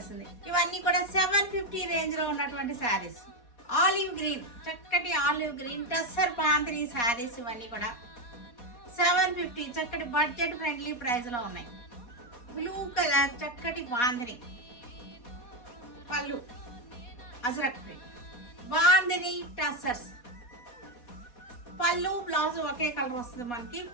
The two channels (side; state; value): right; late; 4.2 ms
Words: ఇవన్నీ కూడా 750 రేంజ్లో ఉన్నటువంటి శారీస్. ఆలివ్ గ్రీన్, చక్కటి ఆలివ్ గ్రీన్ టస్సర్ బాందిని శారీస్ ఇవన్నీ కూడా 750 చక్కటి బడ్జెట్ ఫ్రెండ్లీ ప్రైస్లో ఉన్నాయి. బ్లూ కలర్ చక్కటి బాందిని, పళ్ళు అజరక్ ప్రింట్, బాందిని టస్సర్స్. పళ్ళు బ్లౌజ్ ఒకే కలర్ వస్తుంది మనకి.